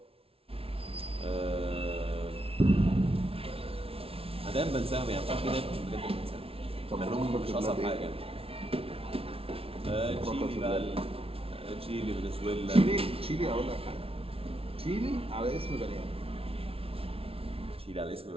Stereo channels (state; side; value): late; left; 0.27 ms